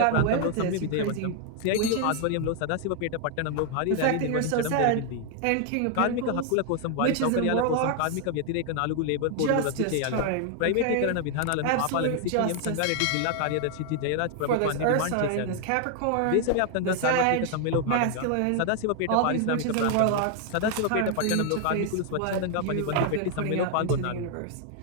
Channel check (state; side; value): different; both; correlation 0.00